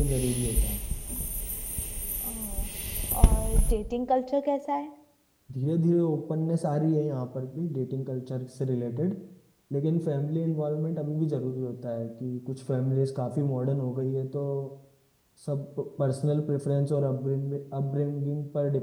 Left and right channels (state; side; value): identical; both; correlation 1.00